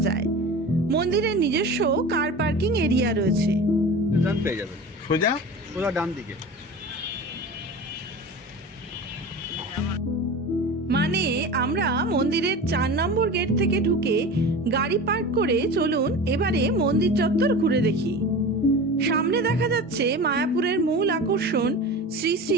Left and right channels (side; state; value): both; normal; correlation 0.33